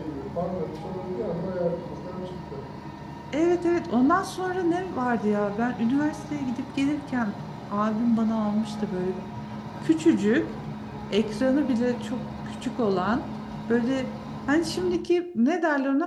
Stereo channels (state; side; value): identical; both; correlation 1.00